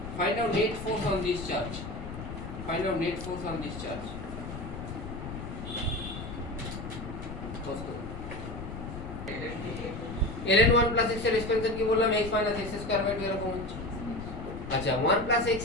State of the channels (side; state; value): left; noise; rumble, 8 dB below the sound